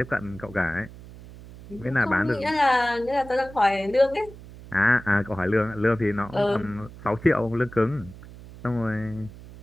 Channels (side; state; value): right; noise; hum, 17 dB below the sound